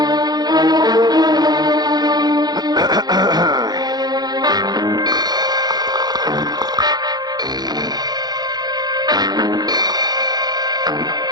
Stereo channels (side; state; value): left; late; 0.19 ms